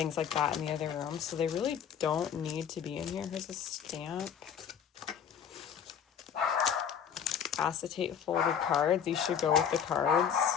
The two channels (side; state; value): right; quieter; 8.1 dB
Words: like that in the other room, so they really don't need to be in here. Here's a stamp. Acetate folded cards. These should go with the cards.